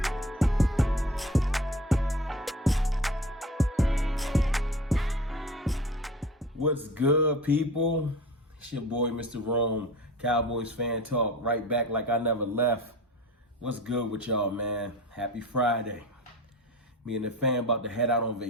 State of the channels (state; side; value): normal; both; correlation 0.38